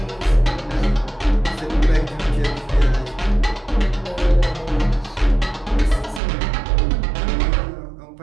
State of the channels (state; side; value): drops out; left; at 6.2 s